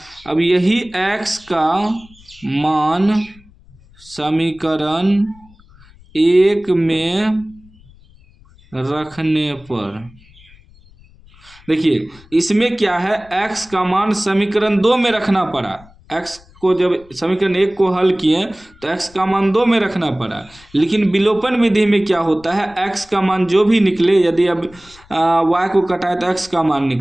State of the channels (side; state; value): left; noise; rumble, 26 dB below the sound